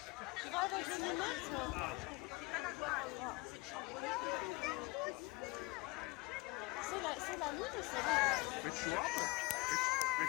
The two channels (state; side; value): quieter; right; 23.7 dB